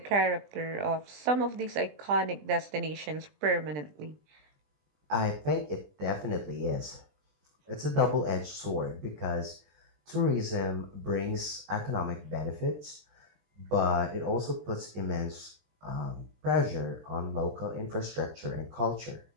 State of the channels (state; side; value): late; left; 20 ms